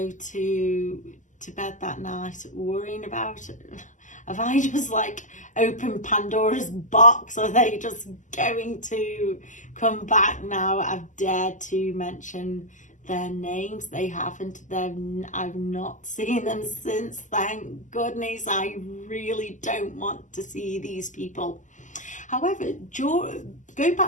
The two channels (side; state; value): right; late; 0.37 ms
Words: to bed that night worrying about it. Have I just like opened Pandora's box? Are they just going to come back now? I've dared to mention their names. They haven't. I've not seen them since. Thank goodness. I really don't want to see these people. However, going